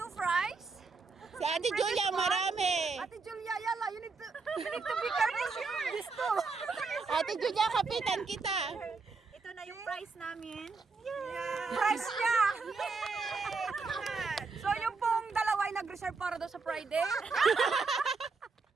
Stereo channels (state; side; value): quieter; left; 4.4 dB